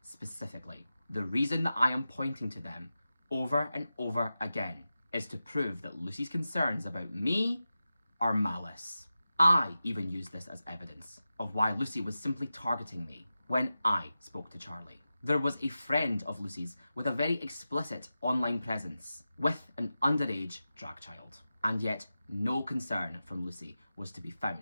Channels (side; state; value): both; inverted; correlation -0.93